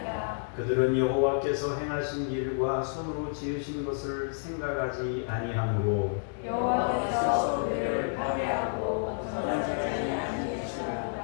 그들은 여호와께서 행하신 일과 손으로 지으신 것을 생각하지 아니하므로 여호와께서 그들을 파괴하고 전하지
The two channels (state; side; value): silent; right; digital silence